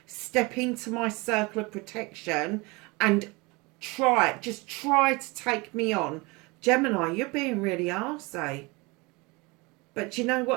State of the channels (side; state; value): left; quieter; 25.8 dB